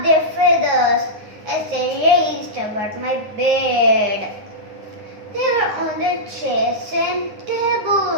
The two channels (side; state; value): left; late; 9.6 ms